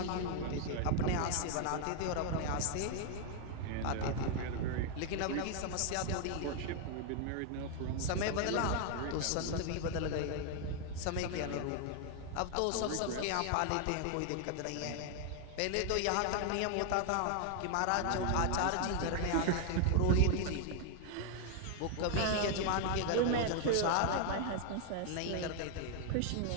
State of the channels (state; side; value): different; both; correlation 0.00